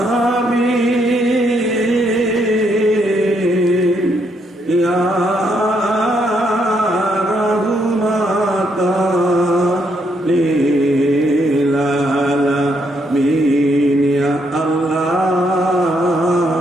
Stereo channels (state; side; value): normal; both; correlation 0.75